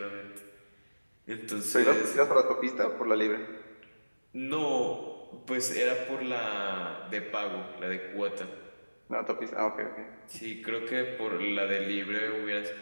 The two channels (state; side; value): inverted; both; correlation -1.00